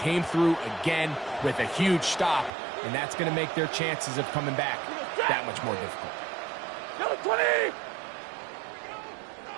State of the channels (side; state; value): left; drops out; at 2.5 s